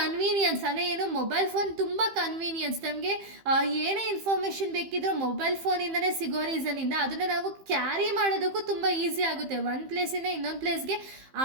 ಅಂದರೆ ಏನು, ಮೊಬೈಲ್ ಫೋನ್ ತುಂಬ ಕನ್ವೀನಿಯನ್ಸ್. ನಮಗೆ ಏನೇ ಇನ್ಫಾರ್ಮೇಷನ್ ಬೇಕಿದ್ರೂ ಮೊಬೈಲ್ ಫೋನಿಂದನೇ ಸಿಗೋ ರೀಸನಿಂದ ಅದನ್ನು ನಾವು ಕ್ಯಾರಿ ಮಾಡೋದಕ್ಕೂ ತುಂಬ ಈಸಿ ಆಗುತ್ತೆ. ಒಂದು ಪ್ಲೇಸಿಂದ ಇನ್ನೊಂದು ಪ್ಲೇಸ್ಗೆ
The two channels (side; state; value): left; late; 15 ms